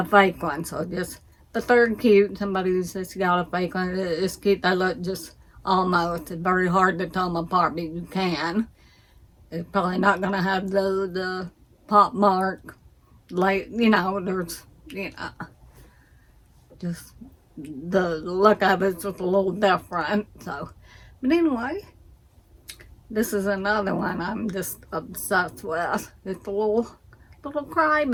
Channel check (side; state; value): both; identical; correlation 1.00